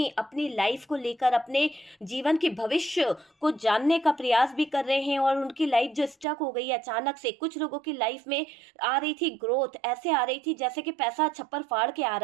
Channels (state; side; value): drops out; left; at 6.2 s